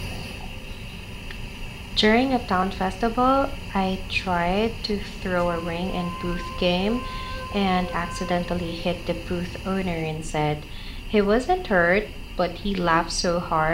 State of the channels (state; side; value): identical; both; correlation 1.00